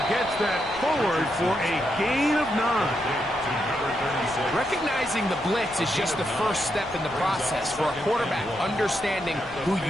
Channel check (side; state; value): left; noise; rumble, 20 dB below the sound